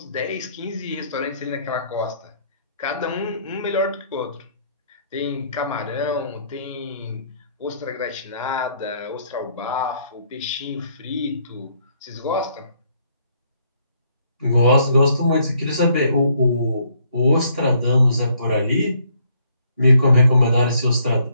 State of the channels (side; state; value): both; inverted; correlation -0.68